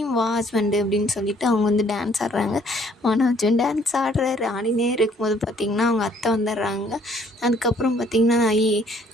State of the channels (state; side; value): normal; both; correlation 0.62